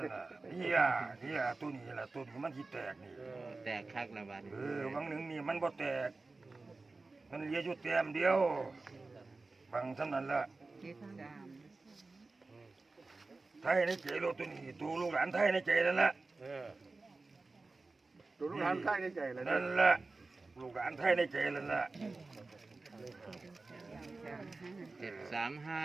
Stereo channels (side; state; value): left; quieter; 3.6 dB